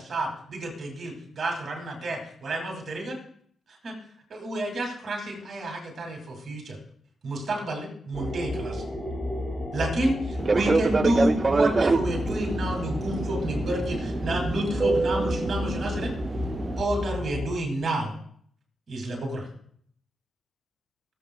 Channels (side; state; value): both; normal; correlation 0.89